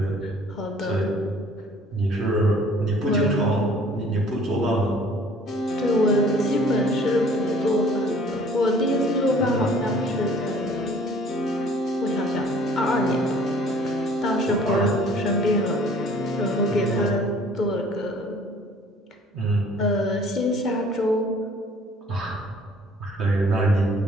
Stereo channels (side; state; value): both; normal; correlation 0.54